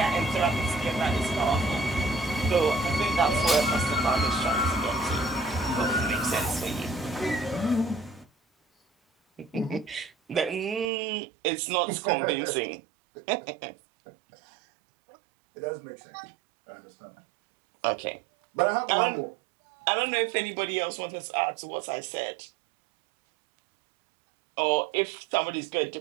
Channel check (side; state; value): left; drops out; at 10.9 s